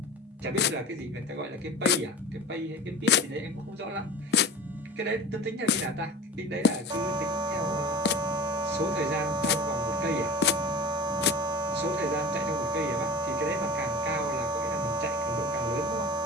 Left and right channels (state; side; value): normal; both; correlation 0.35